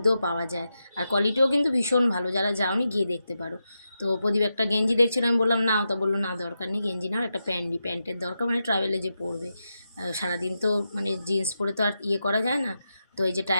পাওয়া যায়, আর কোয়ালিটিও কিন্তু ভীষণ ভালো। যারা যাওনি গিয়ে দেখতে পারো। তো প্রদীপ একটা গেঞ্জি দেখছিল, আমি বললাম নাও, তা বললো না দরকার নেই গেঞ্জি নাও, একটা প্যান্টের দরকার, মানে ট্রাভেলে যে পরবে, সারাদিন তো মানে জিন্স পরে তো আর ইয়ে করা যায় না। তো এই যে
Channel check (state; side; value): inverted; both; correlation -0.88